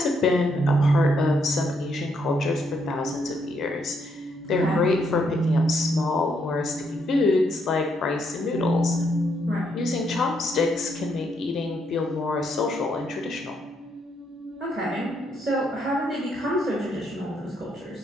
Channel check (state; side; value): normal; both; correlation 0.75